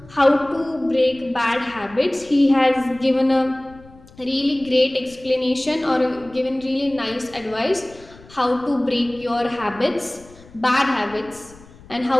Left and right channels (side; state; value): left; noise; rumble, 23 dB below the sound